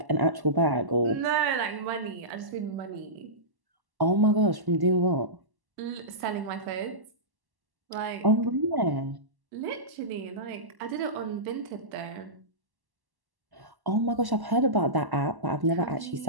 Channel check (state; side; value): late; left; 1.1 ms